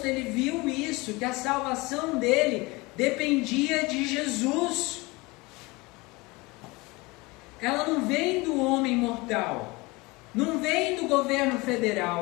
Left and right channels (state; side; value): quieter; right; 23.5 dB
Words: ele viu isso, que a salvação dele dependia de Jesus. Ela não vem do homem mortal, não vem do governo